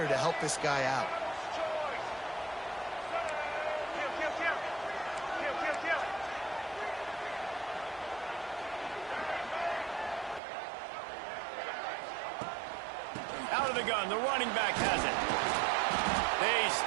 to help this guy out. Out of the gun, the running back has it. They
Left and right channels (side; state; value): left; drops out; at 10.4 s